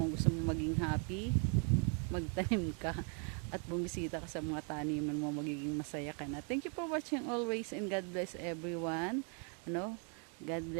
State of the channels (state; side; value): quieter; left; 38.1 dB